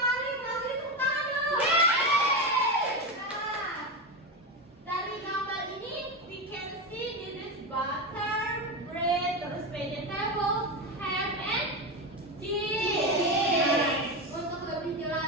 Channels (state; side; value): normal; both; correlation 0.17